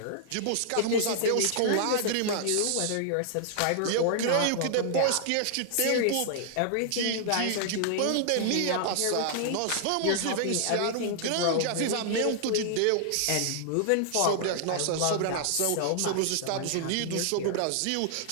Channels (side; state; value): both; different; correlation -0.01